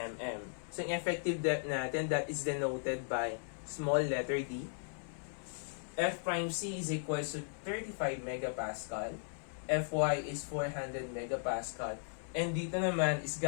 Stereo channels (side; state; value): right; silent; 53 dB below the other